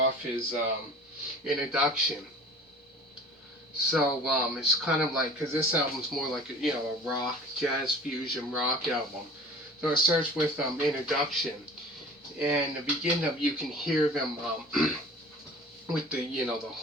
is Introduction. So it's kind of like, because this album's more like a rock, jazz fusion rock album. So it starts with Introduction, and the beginning of you can hear them with the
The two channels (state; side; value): normal; both; correlation 0.43